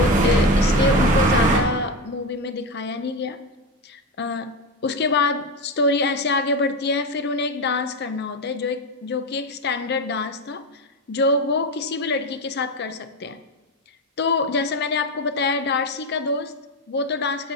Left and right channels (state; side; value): normal; both; correlation 0.16